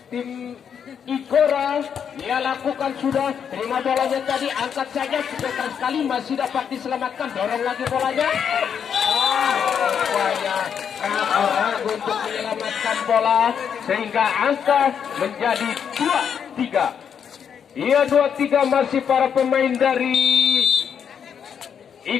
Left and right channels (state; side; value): quieter; right; 7.7 dB